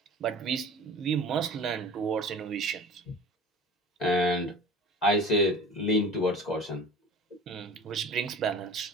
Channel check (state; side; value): normal; both; correlation 0.41